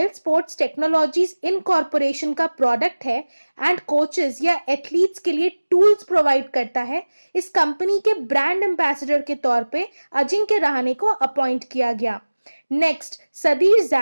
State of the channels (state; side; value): inverted; both; correlation -1.00